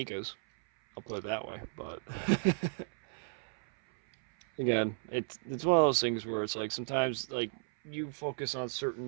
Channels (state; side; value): silent; left; 55 dB below the other